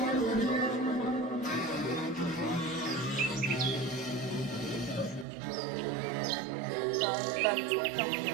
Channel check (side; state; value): left; drops out; at 5.2 s